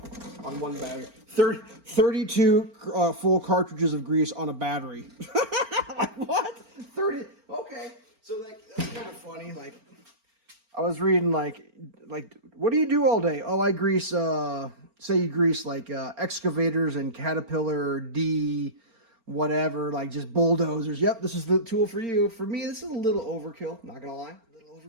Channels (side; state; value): left; late; 4.4 ms